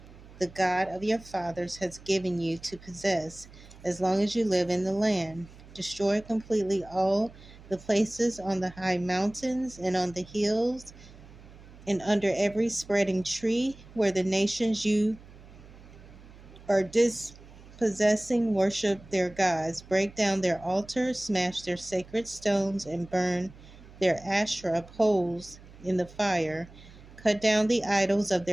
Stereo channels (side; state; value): right; noise; hum, 20 dB below the sound